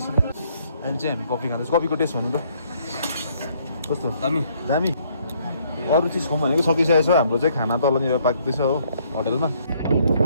अहिले चाहिँ हामी कफी खाँदैछौँ कफीको टेस्ट भन्नु त कस्तो दामी दामी अरू चिज खाउँ भनेको सकिसकेको छ हाम्रो चाहिँ खाना तलनिर पाक्दैछ हो होटलमा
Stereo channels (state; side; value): inverted; both; correlation -0.66